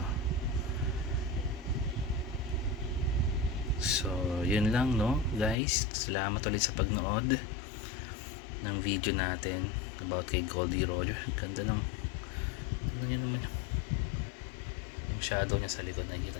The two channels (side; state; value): right; drops out; at 5.6 s